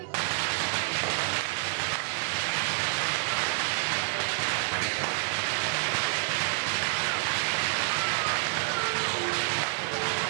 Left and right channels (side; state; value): left; silent; digital silence